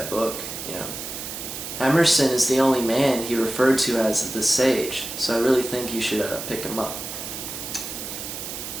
book, you know? Emerson is the only man he referred to as the sage, so I really think you should pick him up.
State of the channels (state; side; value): noise; right; hiss, 7 dB below the sound